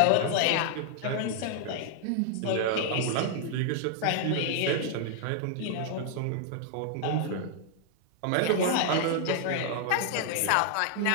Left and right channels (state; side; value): different; both; correlation 0.00